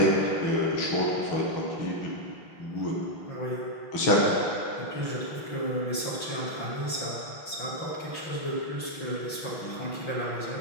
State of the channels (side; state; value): right; late; 5.9 ms